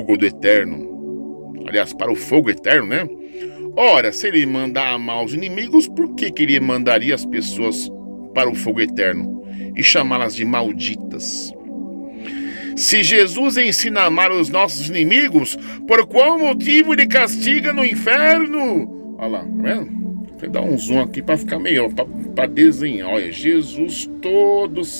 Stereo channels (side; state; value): both; inverted; correlation -1.00